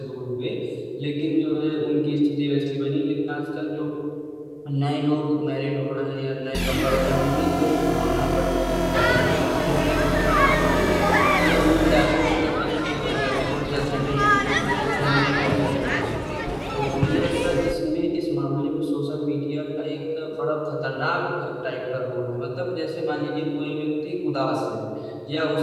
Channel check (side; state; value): both; identical; correlation 1.00